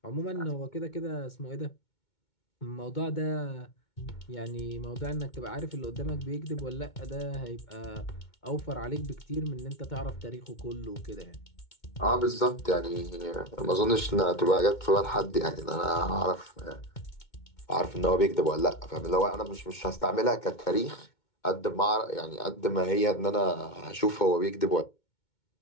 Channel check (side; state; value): right; late; 2.2 ms